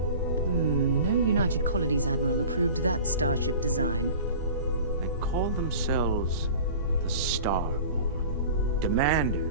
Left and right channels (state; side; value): inverted; both; correlation -0.39